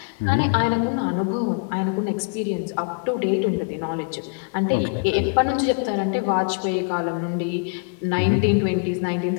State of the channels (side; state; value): right; quieter; 35.2 dB